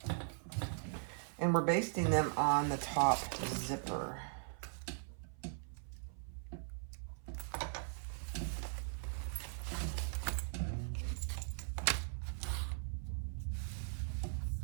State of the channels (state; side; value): silent; left; 51 dB below the other